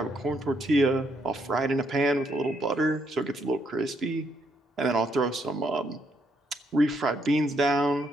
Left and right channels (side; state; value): both; normal; correlation 0.74